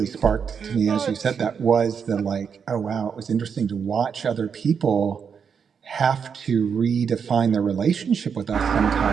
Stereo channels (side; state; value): left; quieter; 6.7 dB